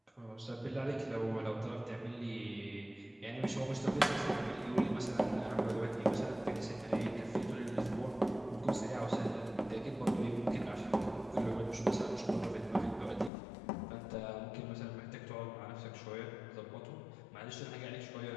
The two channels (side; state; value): right; drops out; at 13.3 s